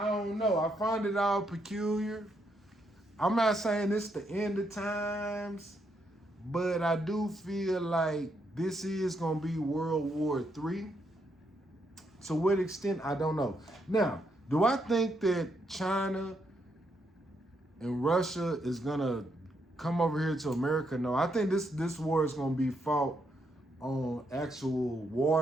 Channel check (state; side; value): normal; both; correlation 0.78